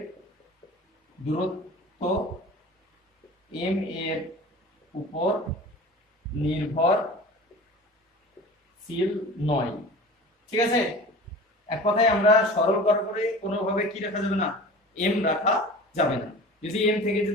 দূরত্ব এম এর উপর নির্ভরশীল নয়, ঠিক আছে। এক কথায় আমরা সরল করার পরে কোনোভাবে কি রাখা যাবে না, এম রাখা যাবে না, যদি এম থেকে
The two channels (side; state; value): both; normal; correlation 0.38